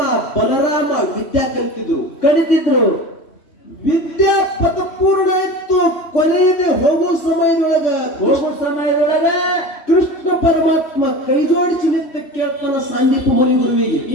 ಬಲರಾಮ ವಿದ್ಯಾ ಕಲಿತಿದ್ರು. ವಿದ್ಯಾ ಪದಪೂರ್ಣ ಆಯ್ತು. ಕೊನೆಯದೇ ಹೋಗೋ ಸಮಯದೊಳಗ ಕೃಷ್ಣ ಪರಮಾತ್ಮ ಕೈ ಜೋಡಿಸಿ ನಿಂತ ಕೇಳ್ತಾನ ಸಾಂದೀಪ ಮುನಿ ಗುರುವಿಗೆ,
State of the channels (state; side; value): late; right; 3.1 ms